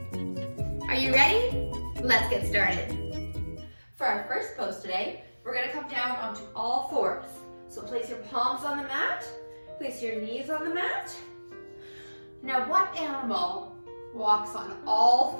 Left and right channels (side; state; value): both; inverted; correlation -1.00